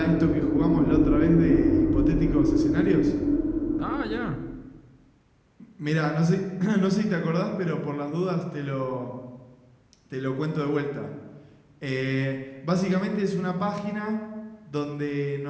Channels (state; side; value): identical; both; correlation 1.00